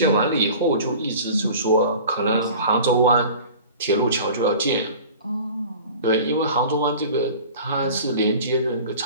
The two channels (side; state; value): both; inverted; correlation -0.41